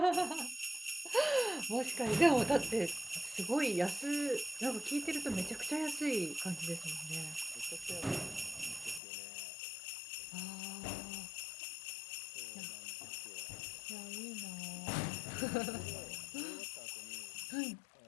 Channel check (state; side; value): drops out; right; at 9.0 s